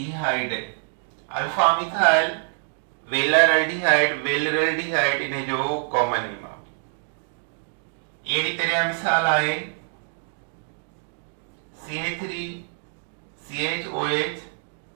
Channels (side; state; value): left; silent; digital silence